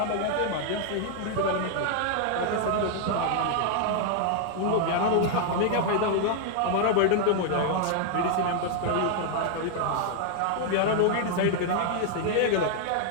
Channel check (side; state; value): both; different; correlation 0.00